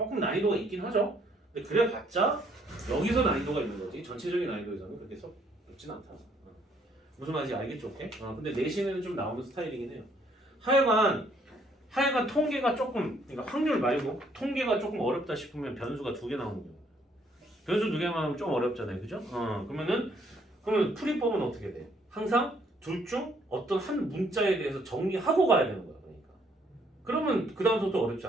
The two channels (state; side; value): normal; both; correlation 0.67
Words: 난이도가 있긴 하죠. 근데 그래봤자 여기서 난이도가 있는 거지 전체적인 난이도에서는 그렇게 썩 높진 않다. 무슨 말인지 알겠죠? 오케이? 근데 내신에는 좀 나오는 스타일이긴 해요. 하여간 통계가 조금 그러니까 확률 말고 통계가 조금 어렵다 싶으면 변수가 2개 나오는 거예요. 변수 2개만 하면 좀 어렵잖아요. 그죠? 그러면 풀이법은 어떻게 돼? 항상 둘 중 어떤 한 문자에 대해서 정리하고 가야 되는 거야. 그러면 그 다음부터 어렵지